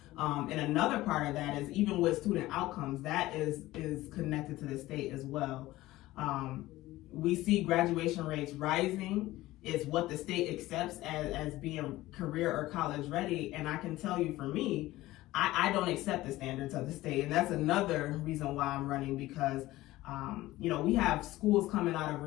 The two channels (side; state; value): right; quieter; 17.2 dB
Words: And another part of that is, even with student outcomes, that is connected to the state as well. We see graduation rates rising. It's what the state accepts as being career or college ready. And I can tell you, for me, I don't accept the standards of the state. And that's another reason why I'm running, because you know, we have schools coming out